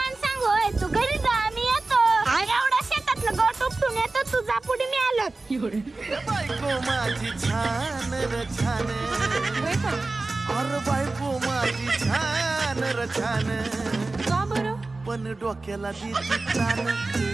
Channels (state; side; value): quieter; left; 3.4 dB